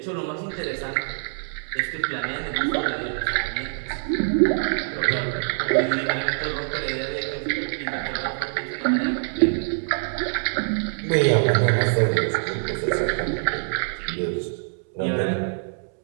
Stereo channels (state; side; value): silent; left; 62 dB below the other